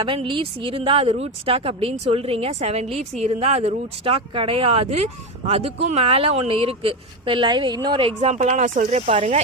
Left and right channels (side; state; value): both; normal; correlation 0.15